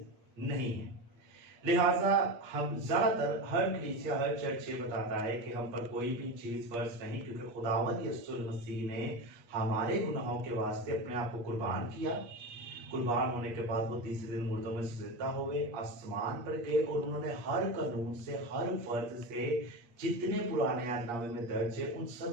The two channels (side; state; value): left; late; 8.5 ms